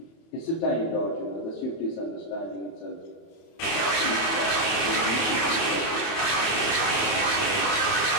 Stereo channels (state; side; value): late; right; 30 ms